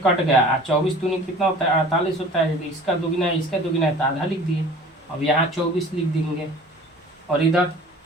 कट गया, 24 दूनी कितना होता है 48 होता है, इसका दुगना है इसका दुगना है तो आधा लिख दिए। अब यहाँ 24 लिख देंगे और इधर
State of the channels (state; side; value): normal; both; correlation 0.45